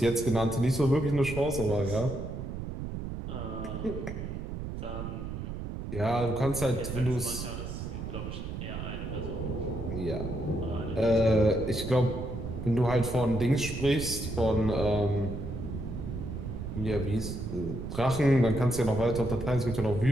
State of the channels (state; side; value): noise; right; rumble, 6 dB below the sound